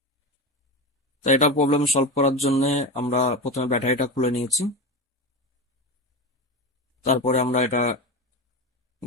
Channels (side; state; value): both; normal; correlation 0.21